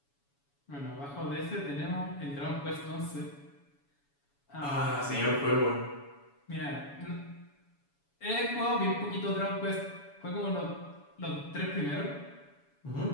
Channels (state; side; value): late; right; 7.1 ms